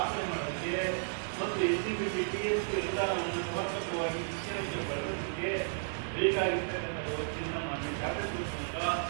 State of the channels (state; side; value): silent; left; 55 dB below the other